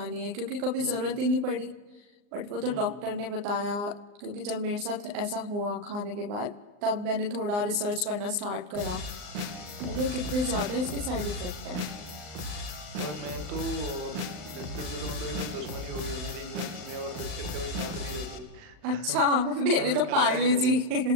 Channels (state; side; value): late; left; 39 ms